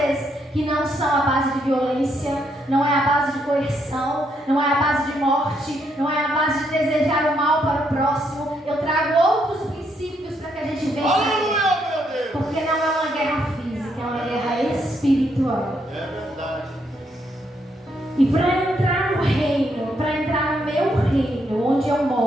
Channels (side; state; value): both; normal; correlation 0.75